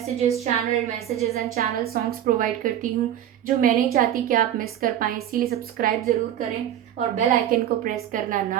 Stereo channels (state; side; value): quieter; left; 11.1 dB